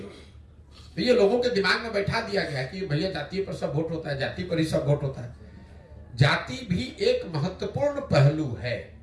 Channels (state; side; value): identical; both; correlation 1.00